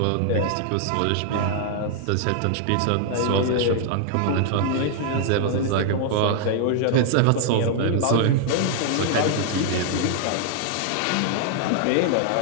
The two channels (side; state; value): both; different; correlation 0.00